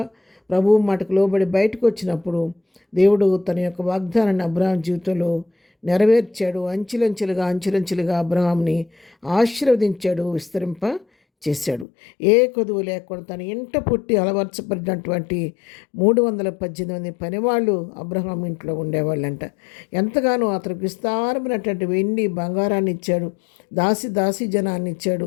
ప్రభువు మాటకు లోబడి బయటకు వచ్చినప్పుడు దేవుడు తన యొక్క వాగ్దానాన్ని అబ్రహాం జీవితంలో నెరవేర్చాడు. అంచెలంచెలుగా అబ్రహాంని ఆశీర్వదించాడు, విస్తరింప చేశాడు. ఏ కొదువు లేకుండా తన ఇంట పుట్టి అలవర్చబడినటువంటి 318 పనివాళ్ళు అబ్రహాం ఇంట్లో ఉండేవాళ్ళంట. ఎంతగానో అతనికి విస్తారమైనటువంటి వెండి బంగారాన్ని ఇచ్చాడు, దాసి జనాన్ని ఇచ్చాడు,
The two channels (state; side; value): drops out; right; at 11.9 s